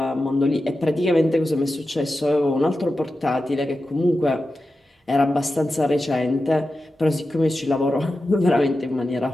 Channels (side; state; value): both; normal; correlation 0.92